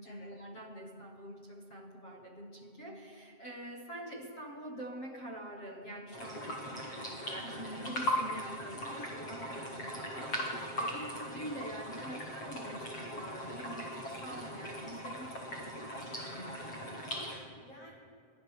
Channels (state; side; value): late; right; 7.6 ms